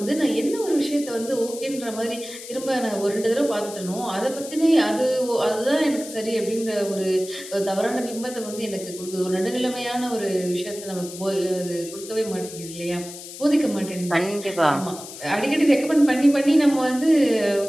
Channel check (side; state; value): left; noise; hiss, 13 dB below the sound